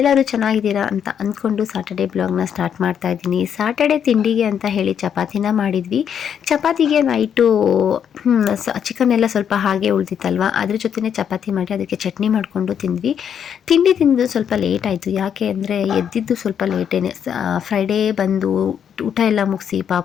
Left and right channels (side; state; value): right; quieter; 8.3 dB